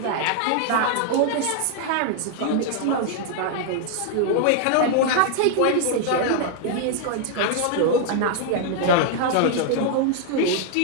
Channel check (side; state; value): both; different; correlation 0.00